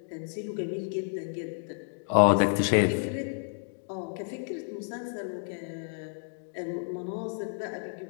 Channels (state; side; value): silent; right; digital silence